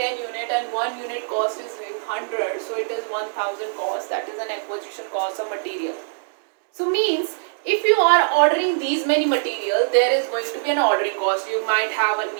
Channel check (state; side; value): silent; left; digital silence